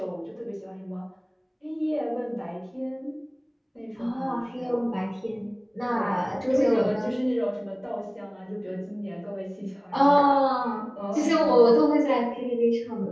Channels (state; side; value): identical; both; correlation 1.00